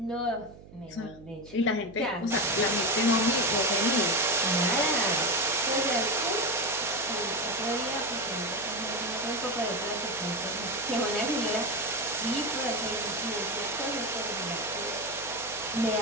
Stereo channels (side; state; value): right; noise; hum, 20 dB below the sound